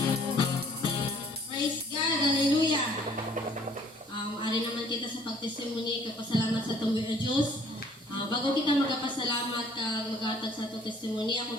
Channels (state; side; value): normal; both; correlation 0.58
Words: Praise God, hallelujah. Ari naman kita sa pagtestimony, kapasalamat sa tumboy o Diyos. Bago kita magpasalamat kag magatag sa itong testimony,